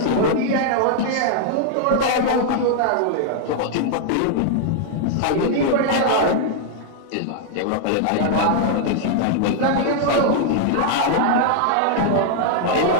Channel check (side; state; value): both; different; correlation -0.01